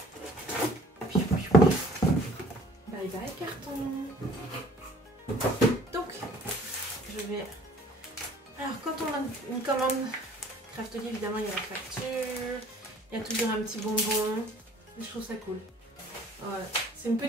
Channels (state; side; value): normal; both; correlation 0.53